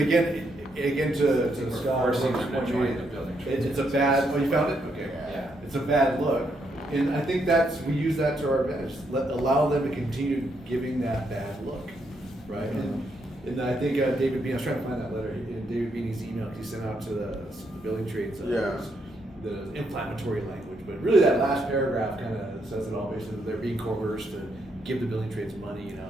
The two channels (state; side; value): normal; both; correlation 0.77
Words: to Scott, Forcing them to join the building trades. it's a bad, you found it? Okay. Yeah. It's a bad look, and I think we use that to our advantage, allow them to continue giving that bad look, right? And I think David Bean, I was trying to find that letter, David Beanie's email he sent out to the building trades. The inflammatory language, but really that last paragraph kind of says it all, basically, they're being coerced to give the building trades money,